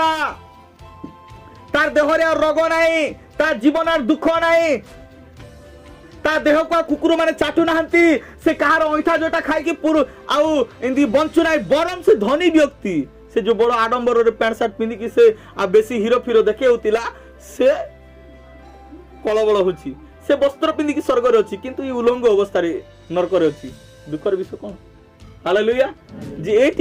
तार देह रे रोग नाही तार जीवन दुख नाही ता देह को कुकुर माने चाटू नाहंती से कहार ऐठा जोटा खाई कि पुरु आउ इंदी बंचु नाही बरम से धनी व्यक्ति से जो बड़ आडंबर रे पैंट शर्ट पिंदी कि से आ बेसी हीरो फिरो देखे होतिला से कलबल होची से वस्त्र पिंदी कि स्वर्ग रे अछि किंतु ई उलंग अवस्था रे नरक रे अछि दुखर विषय कोन हालेलुया जे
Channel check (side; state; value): both; identical; correlation 1.00